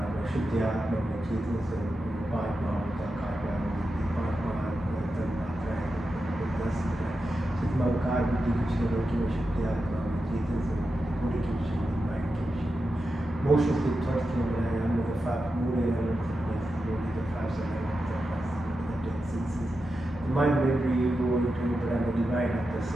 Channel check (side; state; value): both; normal; correlation 0.90